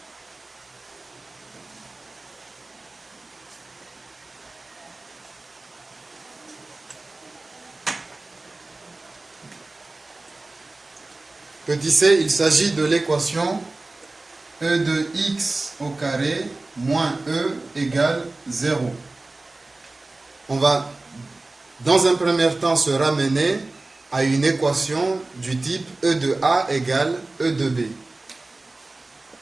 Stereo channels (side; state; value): left; quieter; 3.1 dB